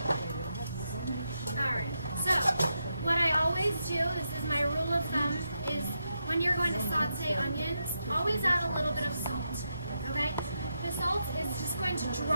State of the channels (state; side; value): inverted; both; correlation -0.84